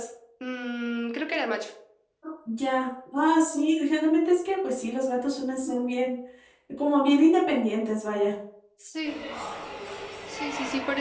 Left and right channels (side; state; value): both; identical; correlation 1.00